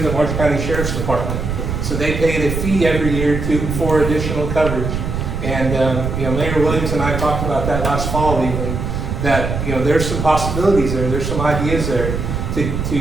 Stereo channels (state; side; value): noise; right; rumble, 3 dB below the sound